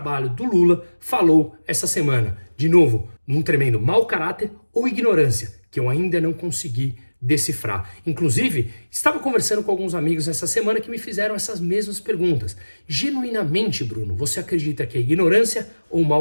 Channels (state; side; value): inverted; both; correlation -1.00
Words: do Lula, falou essa semana. De novo, num tremendo mau caráter ou ignorância, que eu ainda não consegui decifrar. Inclusive, estava conversando com alguns amigos essa semana que me fizeram essas mesmas perguntas. Genuinamente, Bruno, você acredita que é ignorância ou